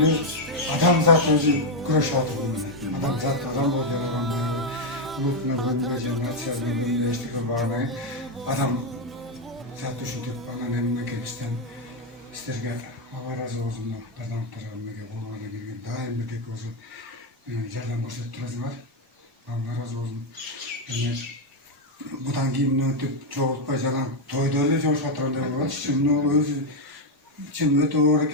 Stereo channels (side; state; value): both; normal; correlation 0.03